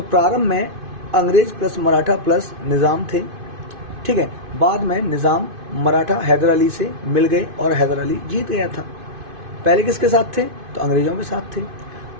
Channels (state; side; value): late; left; 2.5 ms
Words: प्रारंभ में अंग्रेज प्लस मराठा प्लस निजाम थे, ठीक है। बाद में निजाम मराठा हैदर अली से मिल गए और हैदर अली जीत गया था। पहले किसके साथ थे, तो अंग्रेजों के साथ थे,